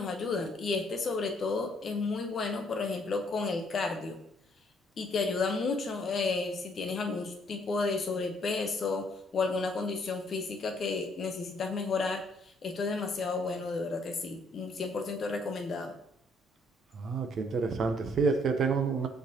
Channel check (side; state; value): both; normal; correlation 0.66